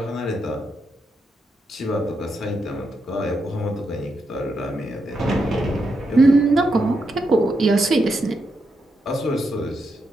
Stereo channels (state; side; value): normal; both; correlation 0.83